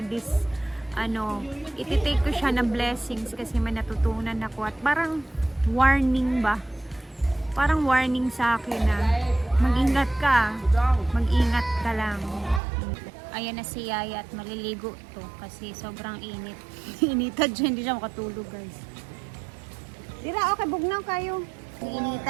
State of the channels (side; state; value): left; drops out; at 12.6 s